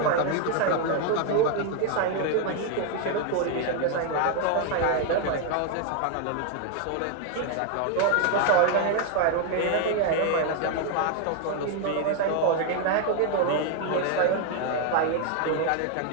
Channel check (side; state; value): both; different; correlation 0.00